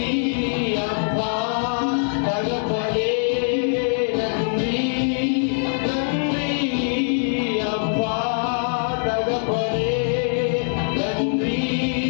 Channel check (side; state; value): right; silent; digital silence